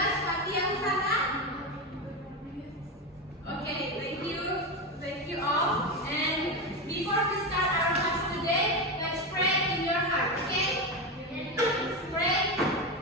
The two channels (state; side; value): normal; both; correlation 0.16